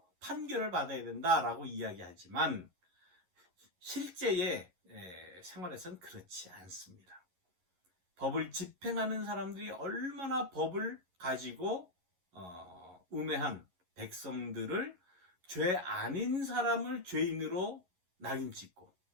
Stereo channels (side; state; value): left; late; 11 ms